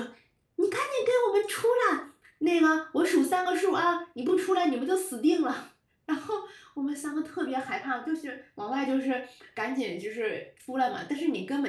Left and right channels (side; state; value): both; identical; correlation 1.00